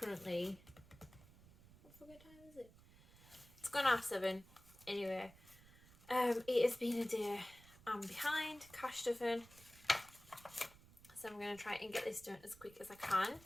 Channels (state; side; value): noise; right; rumble, 22 dB below the sound